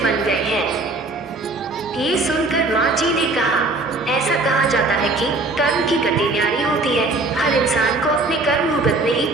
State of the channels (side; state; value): left; quieter; 3.1 dB